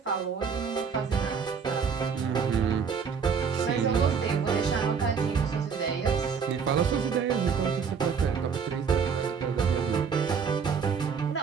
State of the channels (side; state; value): left; quieter; 6.2 dB